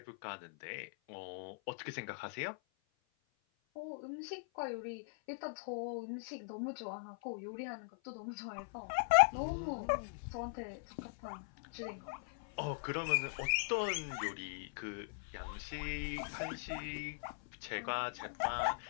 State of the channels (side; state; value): right; silent; 51 dB below the other